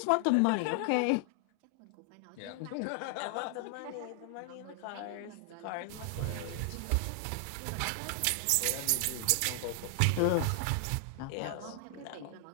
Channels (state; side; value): different; both; correlation 0.00